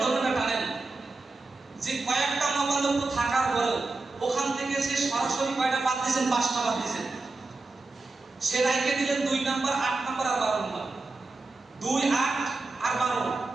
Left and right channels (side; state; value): left; quieter; 3.4 dB